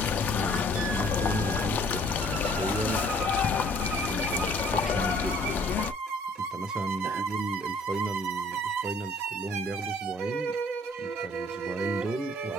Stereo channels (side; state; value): both; normal; correlation 0.58